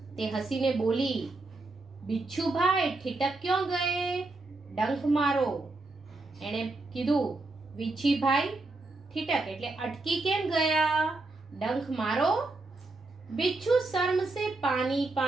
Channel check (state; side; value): quieter; left; 3.2 dB